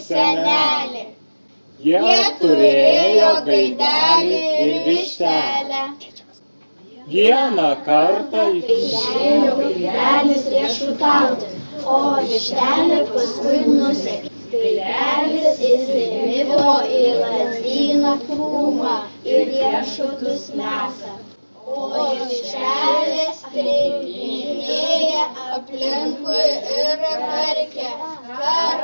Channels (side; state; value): both; inverted; correlation -1.00